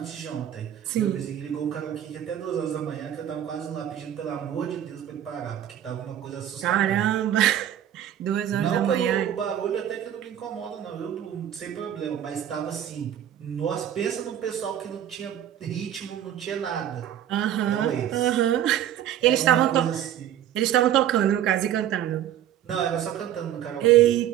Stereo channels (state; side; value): quieter; left; 10.9 dB